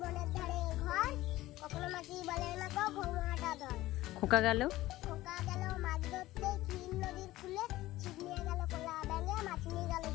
বনের ধারে ঘর কখনো মাসি বলে না কো ঘুমাটা ধর খোকা গেল মাছ ধরতে ক্ষীর নদীর ফুলে ছিপ নিয়ে গেল খোলা ব্যাঙে মাছ নিয়ে গেল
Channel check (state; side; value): quieter; right; 16.7 dB